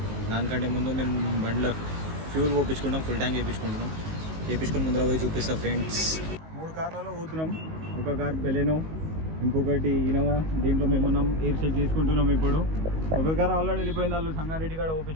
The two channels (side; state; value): left; late; 19 ms